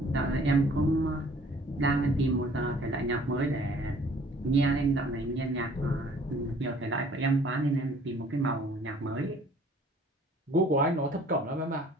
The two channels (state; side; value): normal; both; correlation 0.55